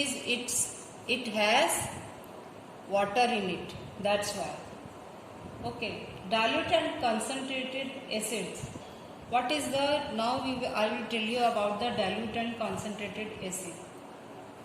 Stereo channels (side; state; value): both; identical; correlation 1.00